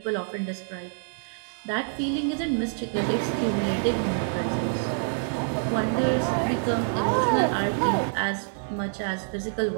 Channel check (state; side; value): silent; left; digital silence